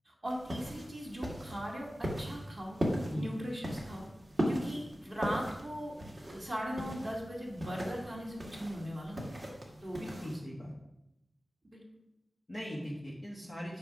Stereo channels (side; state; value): both; normal; correlation 0.95